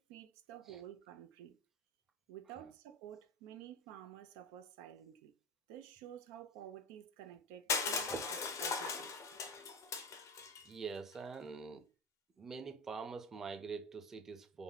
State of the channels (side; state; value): both; normal; correlation 0.23